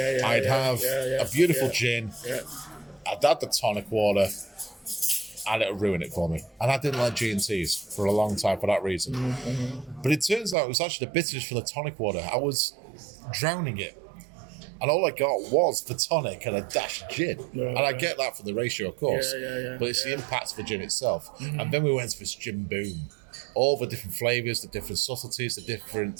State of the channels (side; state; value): left; drops out; at 10.6 s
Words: have a beautiful gin. Yeah. I'd add the tonic water, and it'll ruin it for me. And I didn't like G&Ts for a long time for that reason. But it turns out it was actually the bitterness from the tonic water. I was drowning it. And all I got was the tonic and a dash of gin. And I get that from the ratio, of course. But it's the impact of the gin itself. And then we went to this gin boom. All the different flavours, the different subtleties, the